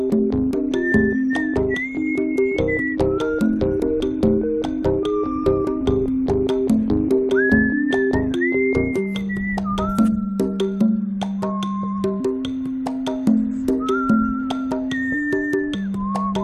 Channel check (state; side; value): identical; both; correlation 1.00